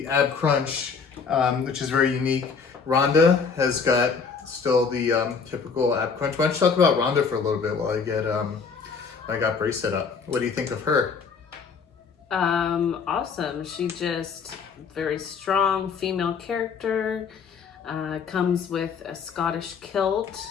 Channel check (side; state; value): right; quieter; 5.7 dB